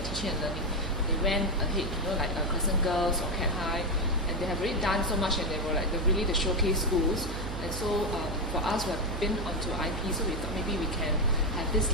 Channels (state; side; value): noise; right; hum, 6 dB below the sound